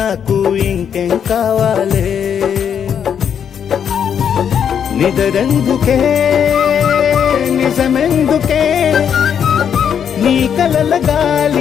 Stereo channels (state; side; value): quieter; right; 8.1 dB